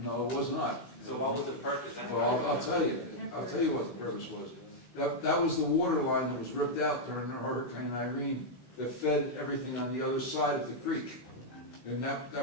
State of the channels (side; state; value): right; late; 16 ms